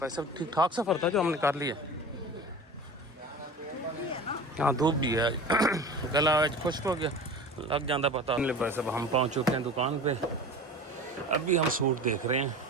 वैसे ठीक ठाक सफ़र था जो हमने कर लिया। हाँ धूप भी है, गला आज खुश्क हो गया, लग जाता पता नहीं। वैसे हम पहुँच चुके हैं दुकान पे, अभी हम सूट देख रहे हैं।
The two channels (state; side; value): normal; both; correlation 0.35